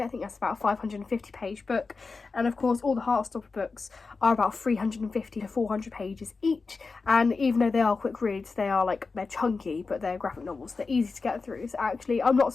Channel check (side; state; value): right; quieter; 4.3 dB